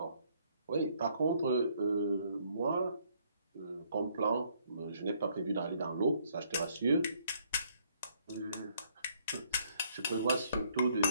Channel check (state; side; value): inverted; both; correlation -0.67